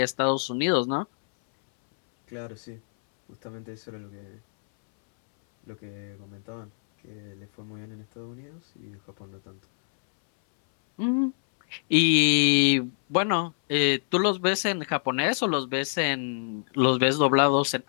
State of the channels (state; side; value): silent; right; 61 dB below the other